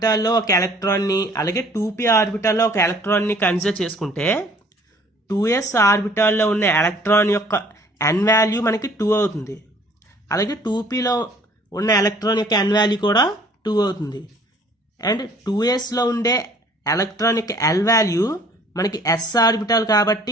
ఒక ఎలక్ట్రాన్ని అలాగే 2p ఆర్బిటాల్లో ఒక ఎలక్ట్రాన్ని కన్సిడర్ చేసుకుంటే 2s ఆర్బిటాల్లో ఉన్న ఎలక్ట్రాన్ యొక్క n వాల్యూ మనకి 2 అవుతుంది. అలాగే 2pలో ఉన్న ఎలక్ట్రాన్ యొక్క n వాల్యూ కూడా 2 అవుతుంది. అండ్ 2sలో ఉండే ఎలక్ట్రాన్ యొక్క l వాల్యూ మనకి s ఆర్బిటాల్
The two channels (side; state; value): both; normal; correlation 0.55